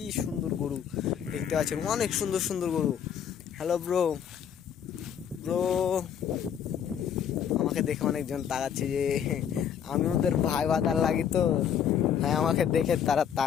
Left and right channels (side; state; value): right; quieter; 8.5 dB